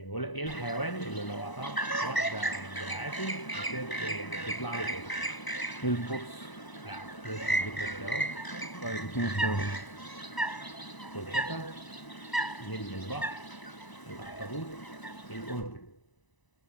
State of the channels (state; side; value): late; right; 1.0 ms